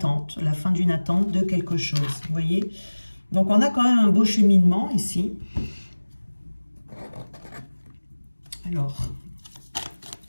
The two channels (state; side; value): inverted; both; correlation -1.00